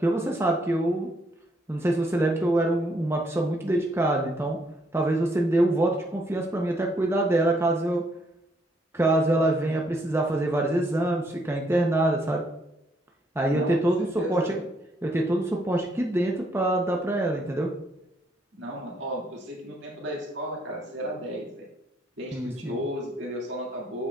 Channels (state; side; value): normal; both; correlation 0.71